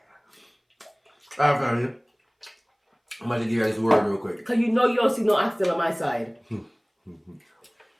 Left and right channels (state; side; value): identical; both; correlation 1.00